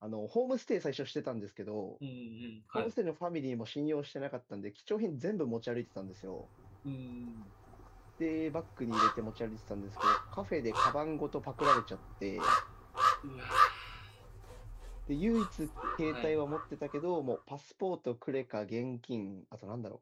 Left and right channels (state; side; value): identical; both; correlation 1.00